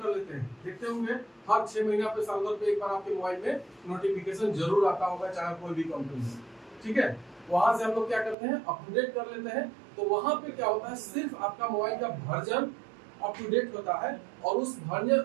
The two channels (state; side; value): drops out; left; at 8.3 s